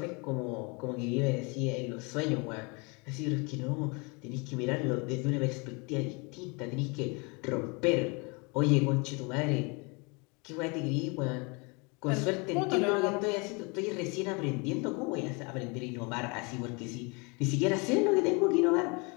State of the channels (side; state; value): right; quieter; 30.2 dB